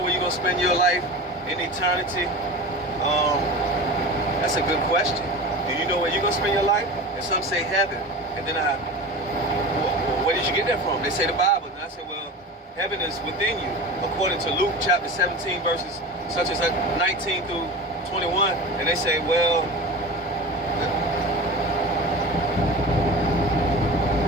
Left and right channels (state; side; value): normal; both; correlation 0.31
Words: where you're going to spend your life in eternity? That's a good question. Do you know where you're going to spend your life? And some say heaven. And then where did you get that from? They say the Bible. And I say, well, heaven is within you. According to Luke chapter 17, verses such as 19 through 21. And they say, well,